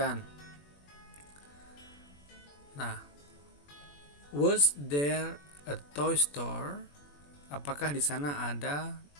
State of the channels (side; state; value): right; late; 21 ms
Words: Nah, was there a toy store? Apakah di sana ada